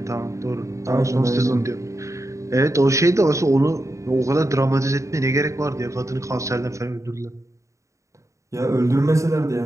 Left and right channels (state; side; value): late; left; 0.15 ms